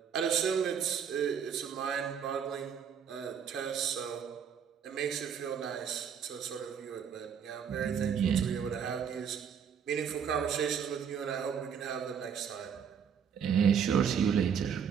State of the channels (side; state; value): left; quieter; 7.5 dB